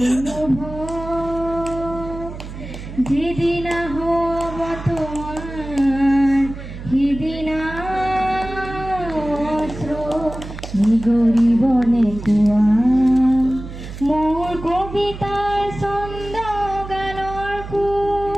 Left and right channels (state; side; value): noise; right; hum, 11 dB below the sound